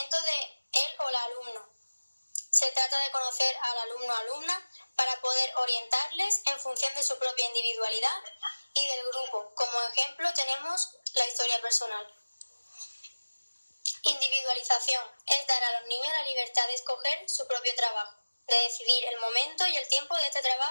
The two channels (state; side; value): inverted; both; correlation -1.00